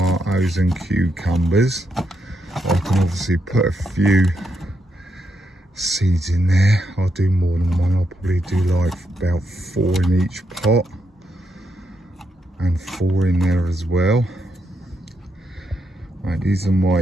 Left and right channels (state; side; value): normal; both; correlation 0.81